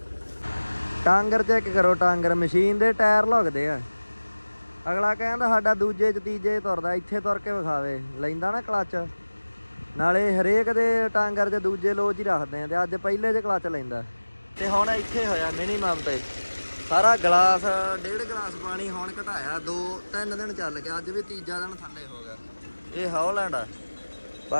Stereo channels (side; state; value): both; inverted; correlation -1.00